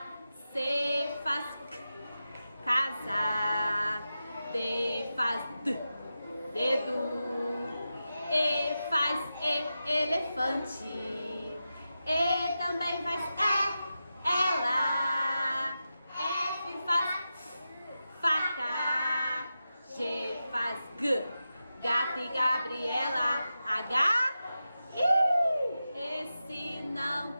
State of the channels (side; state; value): both; inverted; correlation -0.91